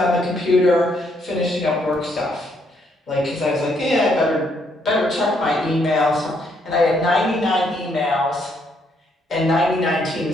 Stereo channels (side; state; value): both; normal; correlation 0.72